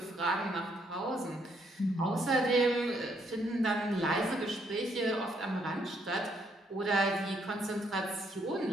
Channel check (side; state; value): both; normal; correlation 0.72